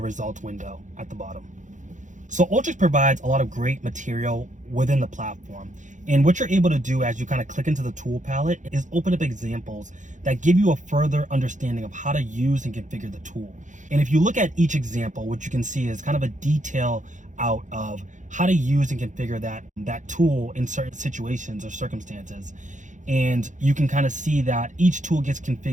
results window at the bottom. So Alteryx provides a lot of great material within the platform. And what you're able to do as you kind of click into the tool palette is open up examples that give you a further understanding of how to use and configure the tool. And if you look at each example, what you can see is kind of a detail out of how to use and configure that tool in certain situations or circumstances. And you can kind of see that each tool gets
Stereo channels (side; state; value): left; late; 0.36 ms